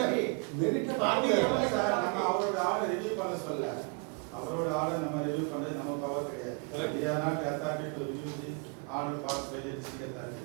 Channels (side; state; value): left; quieter; 35.2 dB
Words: Merit Are we the appellate sir authority? நம்ம அவரோட order review பண்ண சொல்ல. அவரோட order நம்ம review பண்றது நம்ம power கிடையாது. We are not the authority to review the order passed by the district authority.